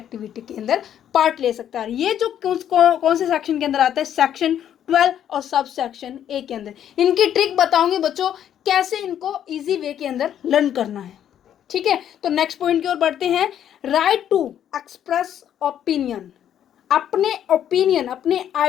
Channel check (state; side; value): quieter; right; 10.1 dB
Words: के अंदर पार्ट ले सकता है। ये जो कौन से सेक्शन के अंदर आता है, सेक्शन 12 और सब सेक्शन ए के अंदर। इनकी ट्रिक बताऊंगी बच्चों, कैसे इनको इजी वे के अंदर लर्न करना है, ठीक है। तो नेक्स्ट पॉइंट की ओर बढ़ते हैं, राइट टू एक्सप्रेस ओपिनियन। अपने ओपिनियन, अपने